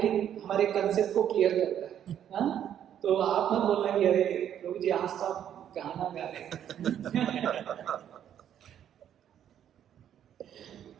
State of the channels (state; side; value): quieter; left; 9.9 dB